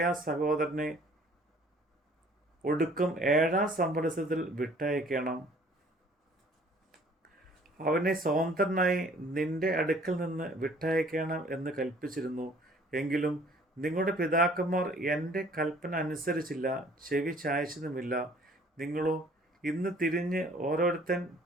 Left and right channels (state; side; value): normal; both; correlation 0.55